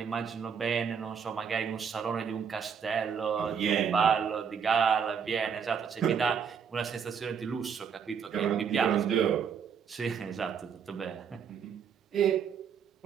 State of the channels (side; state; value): left; quieter; 7.0 dB